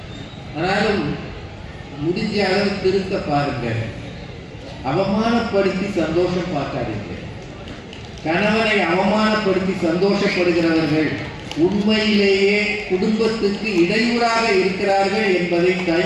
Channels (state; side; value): identical; both; correlation 1.00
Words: ஆனாலும் முடிஞ்ச அளவு திருத்த பாருங்க. அவமானப்படுத்தி சந்தோஷம் பார்க்காதீங்க. கணவனை அவமானப்படுத்தி சந்தோஷப்படுகிறவர்கள் உண்மையிலேயே குடும்பத்துக்கு இடையூறாக இருக்கிறார்கள் என்பதை